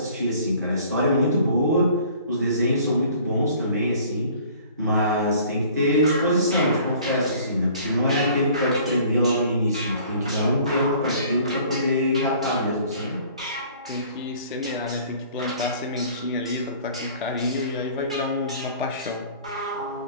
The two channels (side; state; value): both; inverted; correlation -0.51